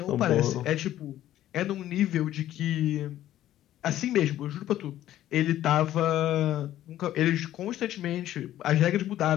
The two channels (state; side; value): quieter; right; 13.0 dB